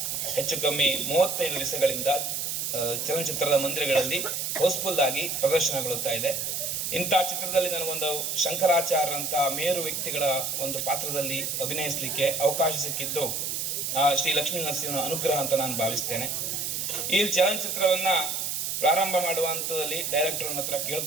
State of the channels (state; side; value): noise; right; hiss, 2 dB below the sound